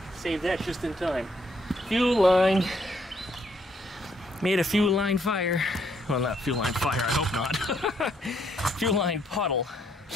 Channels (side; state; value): both; normal; correlation 0.71